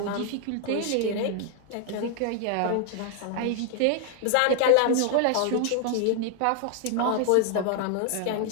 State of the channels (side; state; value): both; different; correlation 0.00